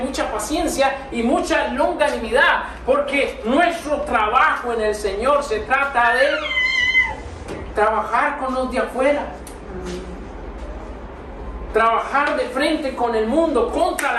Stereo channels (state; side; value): identical; both; correlation 1.00